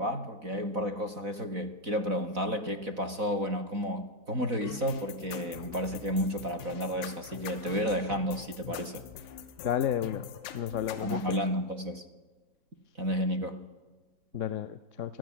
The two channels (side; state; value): left; late; 4.0 ms